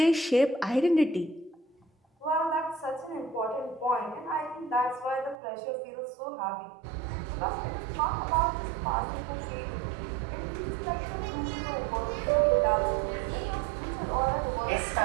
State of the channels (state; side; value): drops out; left; at 5.4 s